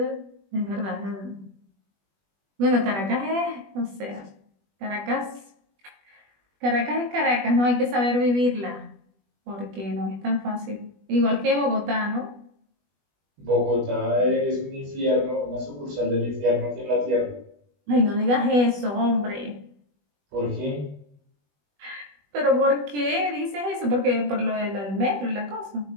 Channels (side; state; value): left; late; 20 ms